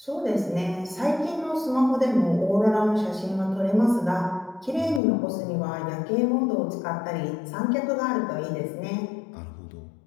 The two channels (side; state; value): right; drops out; at 5.0 s